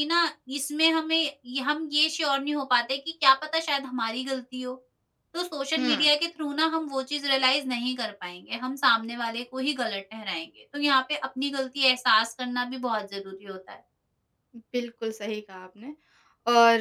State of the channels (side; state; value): both; identical; correlation 1.00